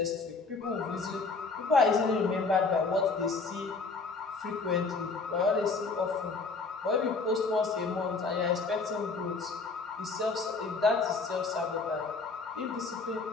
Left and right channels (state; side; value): quieter; right; 4.2 dB